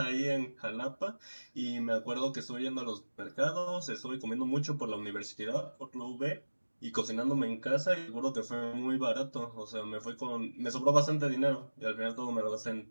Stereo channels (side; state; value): both; inverted; correlation -1.00